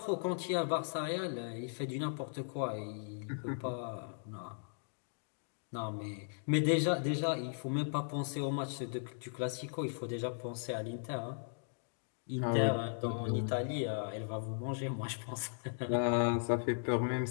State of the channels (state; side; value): silent; right; digital silence